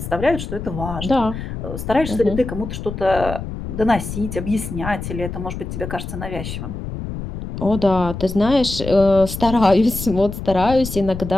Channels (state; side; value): noise; left; rumble, 7 dB below the sound